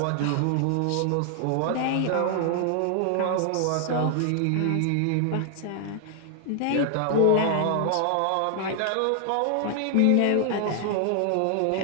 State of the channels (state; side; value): different; both; correlation 0.00